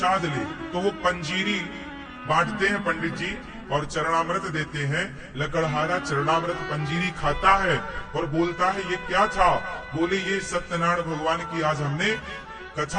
ले। तो वो पंजीरी बांटते हैं पंडित जी और चरणामृत देते हैं। लकड़हारा चरणामृत पंजीरी खाता है और बोलता है, ये क्या था? बोले, ये सत्यनारायण भगवान की आज हमने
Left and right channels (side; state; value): both; identical; correlation 1.00